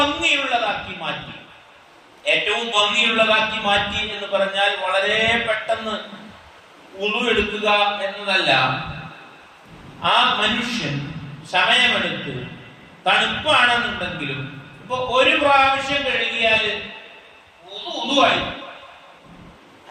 മാറ്റി. ഏറ്റവും ഭംഗിയുള്ളതാക്കി മാറ്റി എന്ന് പറഞ്ഞാൽ വളരെ പെട്ടെന്ന് വുദൂ എടുക്കുക എന്നതല്ല. ആ മനുഷ്യൻ സമയമെടുത്ത്, തണുപ്പാണെന്നുണ്ടെങ്കിലും ഇപ്പൊ ഒരു പ്രാവശ്യം കഴുകിയാൽ വുദൂആയി,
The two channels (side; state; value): both; identical; correlation 1.00